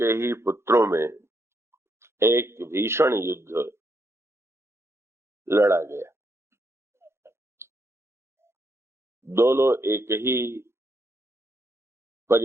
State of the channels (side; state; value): left; late; 0.13 ms